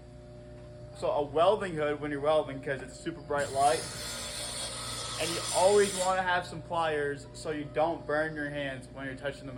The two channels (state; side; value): identical; both; correlation 1.00